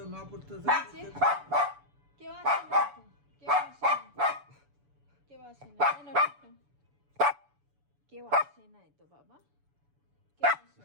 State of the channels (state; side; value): late; left; 7.0 ms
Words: মা পড়তে মিচি, কেউ আসে না তো, কেউ আসে না, কেউ আসে না। এ নাও টিপ নাও। কেউ আসে নাই তো বাবা, কেউ আসে